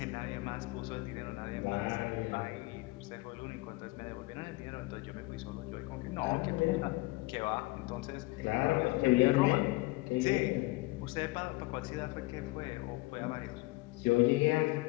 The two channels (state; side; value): quieter; right; 22.7 dB